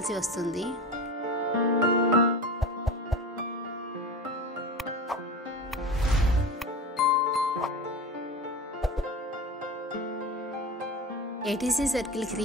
వస్తుంది. ఏటీసీ సర్కిల్కి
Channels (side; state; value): both; normal; correlation 0.29